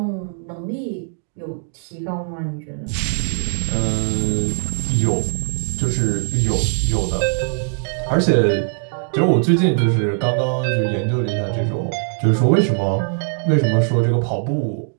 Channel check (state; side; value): silent; left; digital silence